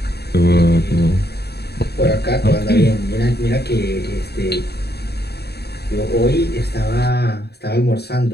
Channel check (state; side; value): late; right; 0.47 ms